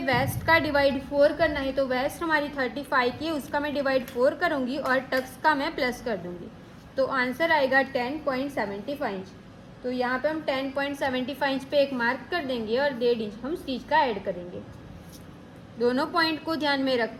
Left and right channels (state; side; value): identical; both; correlation 1.00